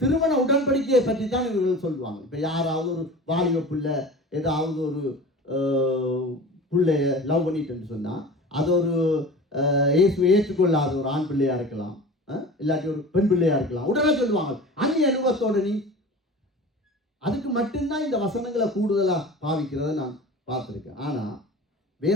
திருமண உடன்படிக்கையை பற்றி தான் இவர்கள் சொல்லுவாங்க. இப்போ யாராவது ஒரு வாலிப பிள்ளை ஏதாவது ஒரு பிள்ளைய லவ் பண்ணிட்டு சொன்னால் அது ஒரு ஏற்றுக்கொள்ளாத ஒரு ஆண் பிள்ளையா இருக்கலாம், இல்லாட்டி ஒரு பெண் பிள்ளையா இருக்கலாம். உடனே சொல்லுவாங்க அந்நிய அனுபவத்தோட நீ. அதுக்கு மட்டும்தான் இந்த வசனங்களை கூடுதலாக பாவிக்கிறத நான் பார்த்துருக்கேன். ஆனால்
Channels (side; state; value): both; normal; correlation 0.37